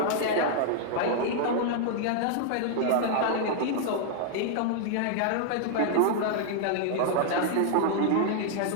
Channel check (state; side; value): different; both; correlation 0.00